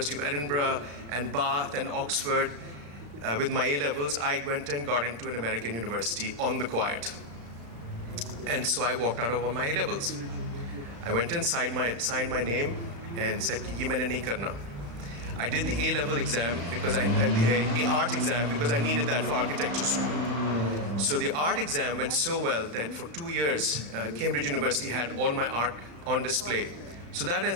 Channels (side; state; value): left; late; 35 ms